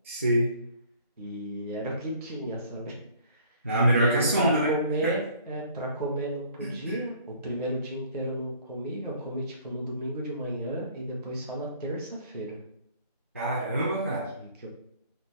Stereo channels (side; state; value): both; inverted; correlation -0.55